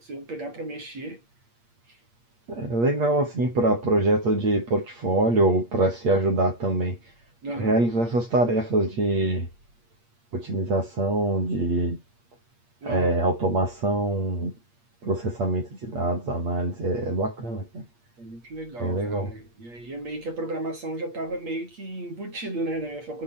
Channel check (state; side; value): late; left; 8.5 ms